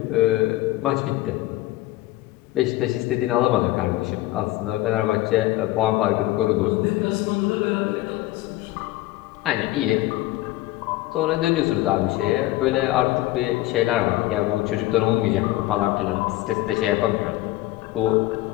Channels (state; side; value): quieter; right; 17.1 dB